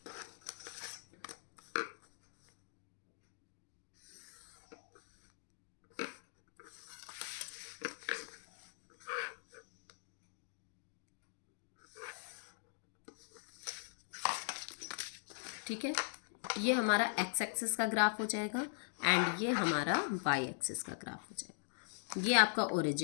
ठीक है, ये हमारा एक्स एक्सिस का ग्राफ हो जाएगा एंड ये हमारा वाई एक्सिस का ग्राफ हो जाएगा। ये आपका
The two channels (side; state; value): right; silent; digital silence